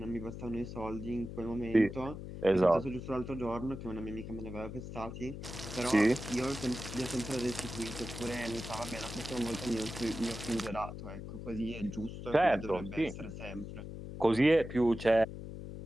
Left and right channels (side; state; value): left; noise; hum, 9 dB below the sound